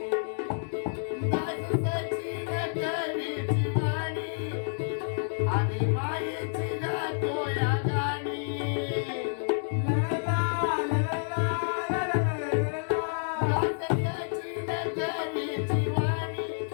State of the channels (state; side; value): silent; right; digital silence